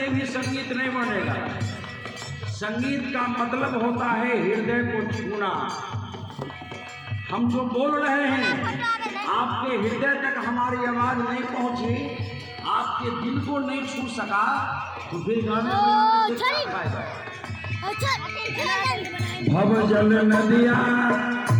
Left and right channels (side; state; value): both; identical; correlation 1.00